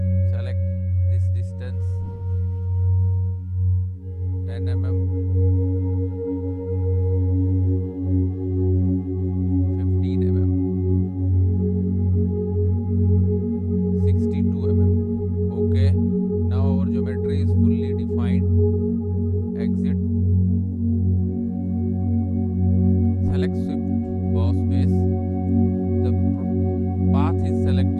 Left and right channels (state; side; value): identical; both; correlation 1.00